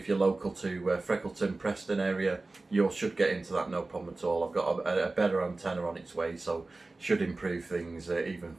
you're local to Freckleton, Preston area, you should get into that no problem at all. I've got a better antenna on its way, so should improve things even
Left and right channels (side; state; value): left; quieter; 3.3 dB